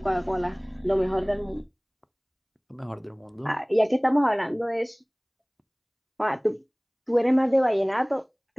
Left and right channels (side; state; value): both; identical; correlation 1.00